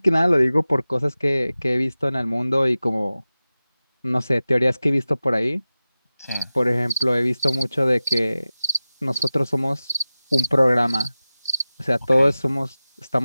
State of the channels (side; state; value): both; inverted; correlation -0.96